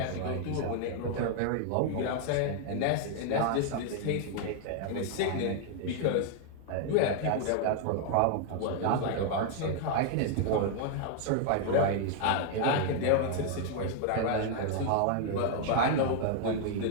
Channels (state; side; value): different; both; correlation 0.00